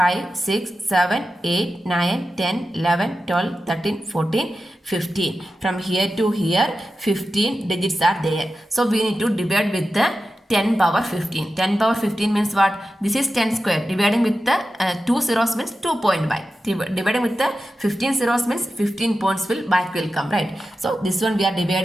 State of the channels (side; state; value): both; normal; correlation 0.92